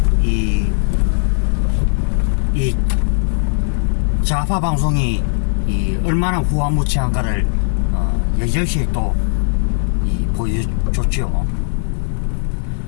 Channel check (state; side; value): silent; right; 61 dB below the other